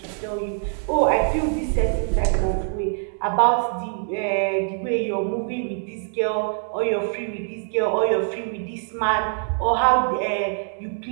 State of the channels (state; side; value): silent; left; 63 dB below the other